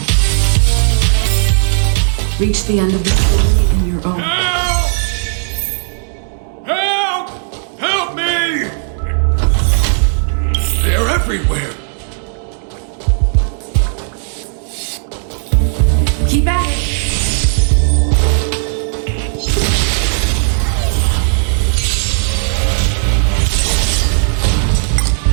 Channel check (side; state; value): left; silent; digital silence